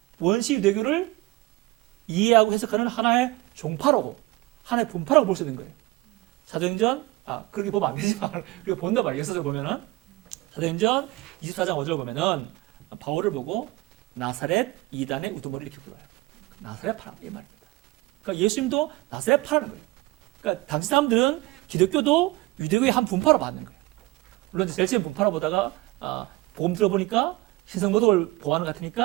원시 유대교를 이해하고 해석하는 하나의 종파라고, 하나의 분파라고 볼 수 있는 거예요. 사도행전, 그렇게 보면 안 되지만, 그리고 본다 말이에요. 역사적으로 보면은. 사도행전 24장 5절 보면은, 바울을 보고 나사렛 이단의 우두머리 이렇게 불러요. 나사렛 파라, 이 말입니다. 그러니까 예수님도 나사렛 파라는 거예요. 그러니까 당시 사람들은 기독교도 유대교의 한 분파로 받는 거예요. 물론 제일 처음 분파로 보다가, 복음 들어보니까 신성모독을 보호하는 것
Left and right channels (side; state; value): left; quieter; 20.7 dB